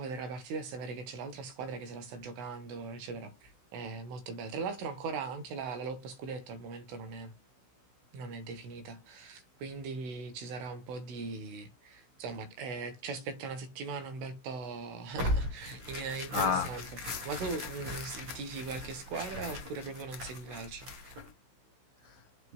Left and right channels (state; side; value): late; left; 16 ms